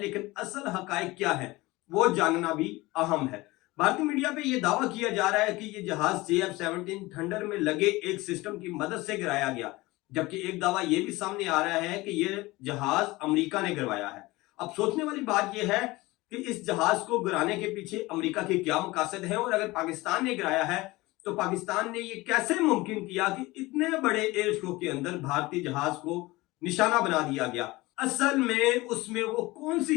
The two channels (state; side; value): quieter; right; 20.9 dB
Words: लेकिन असल हकायक क्या है वो जानना भी अहम है। भारतीय मीडिया पे ये दावा किया जा रहा है कि ये जहाज JF-17 थंडर में लगे एक सिस्टम की मदद से गिराया गया, जबकि एक दावा ये भी सामने आ रहा है कि ये जहाज अमेरिका ने गिरवाया है। अब सोचने वाली बात यह है कि इस जहाज को गिराने के पीछे अमेरिका के क्या मकासद है, और अगर पाकिस्तान ने गिराया है तो पाकिस्तान ने ये कैसे मुमकिन किया कि इतने बड़े एयर शो के अंदर भारतीय जहाज को निशाना बना दिया गया। असल में उसमें वो कौन